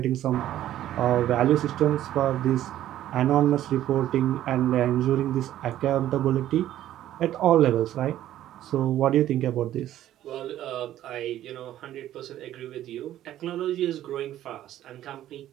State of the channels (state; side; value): quieter; left; 12.7 dB